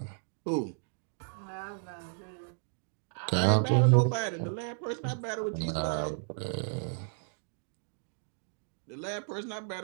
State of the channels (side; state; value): left; silent; digital silence